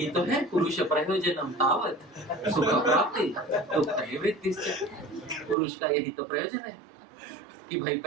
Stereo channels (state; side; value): drops out; left; at 5.6 s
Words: तो है पुरुष प्रयोजनम तावत सुख प्राप्ति दुख निवृत्तिश्च। पुरुष का यही तो प्रयोजन है कि भाई